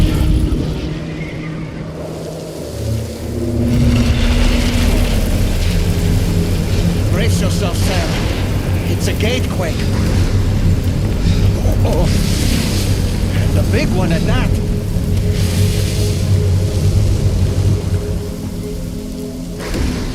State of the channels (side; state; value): both; identical; correlation 1.00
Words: Brace yourself, Sam. It's a gatequake. Oh. And a big one at that.